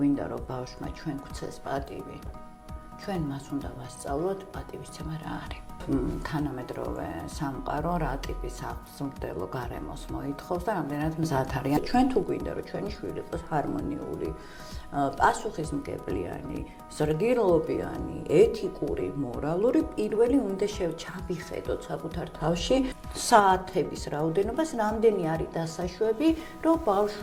რომ ბავშვმა ჩვენ გვცეს პატივი, ჩვენ მას უნდა ვასწავლოთ პატივისცემა რა არის. თანამედროვე სამყარო რა ტიპის აღმზრდელო გარემოს მოითხოვს და რამდენად მზად არიან. ჩვენ თუ გვინდა რომ ჩვენი შვილი იყოს ჰარმონიული, პასუხისმგებლიანი, ზრდილობიანი, ეთიკური, მორალური, პირველი უნდა ჩავიხედოთ საკუთარ თავში საათების რაოდენობას, რამდენი არის დასაშვები, რომ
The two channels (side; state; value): both; identical; correlation 1.00